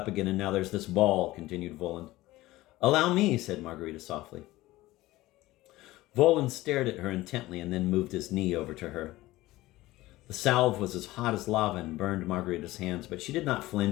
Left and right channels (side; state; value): right; quieter; 17.8 dB